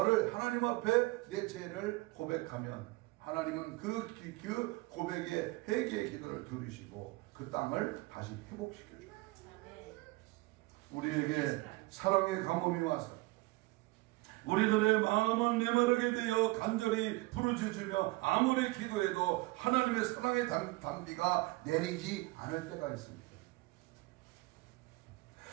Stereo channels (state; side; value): quieter; left; 22.1 dB